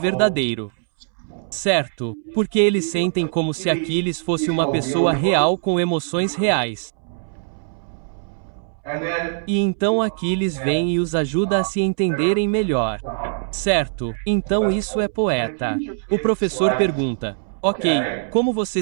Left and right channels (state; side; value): silent; left; 64 dB below the other